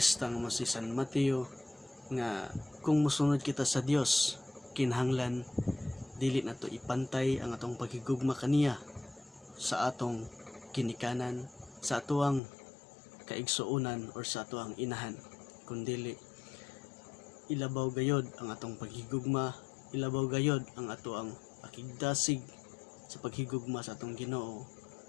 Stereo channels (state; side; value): drops out; right; at 12.4 s